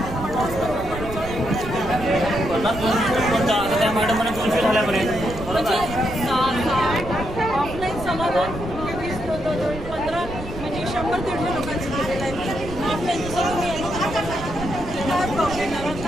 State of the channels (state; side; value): noise; right; rumble, 11 dB below the sound